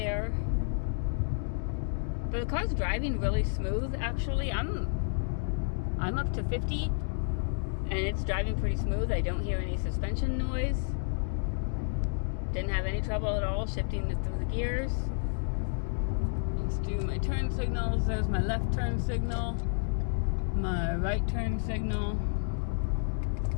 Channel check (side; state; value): right; silent; digital silence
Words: But the car's driving really smooth, actually. I'm up to 50, and it's driving pretty smooth. I don't hear any suspension noise. Didn't have any trouble at all shifting it through the gears. Let's do my turn signals. There's my left turn signal, my right turn signal,